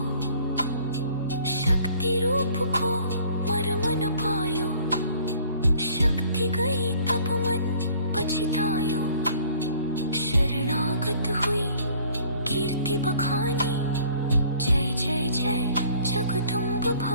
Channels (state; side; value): inverted; both; correlation -0.55